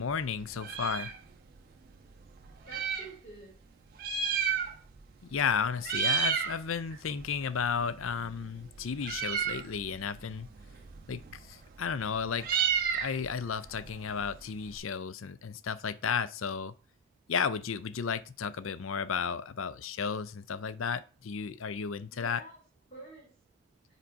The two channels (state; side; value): normal; both; correlation 0.05